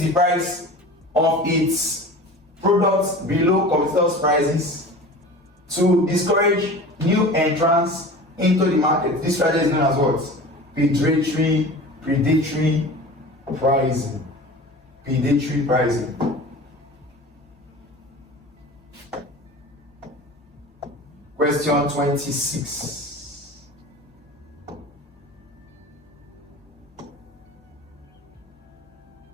the price of its products below competitors' prices to discourage new entrants into the market. This strategy is known as what? Predatory pricing. Predatory pricing. Question 26.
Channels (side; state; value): both; normal; correlation 0.37